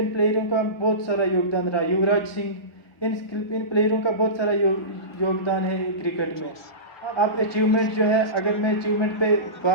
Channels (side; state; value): right; late; 1.4 ms